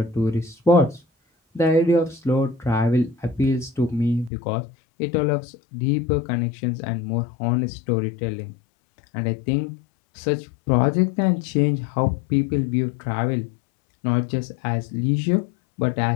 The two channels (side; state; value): right; drops out; at 4.3 s